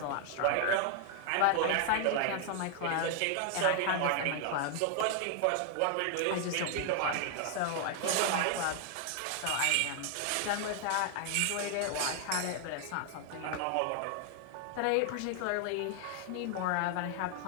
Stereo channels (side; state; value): both; different; correlation 0.00